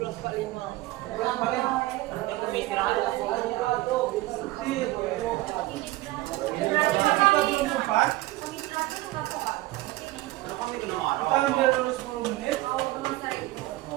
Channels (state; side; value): quieter; left; 18.4 dB